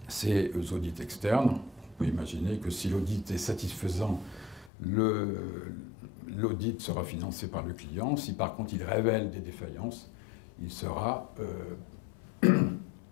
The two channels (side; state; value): right; drops out; at 4.7 s